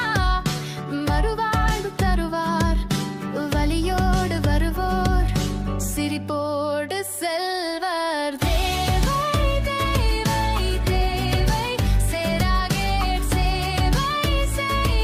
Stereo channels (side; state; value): both; identical; correlation 1.00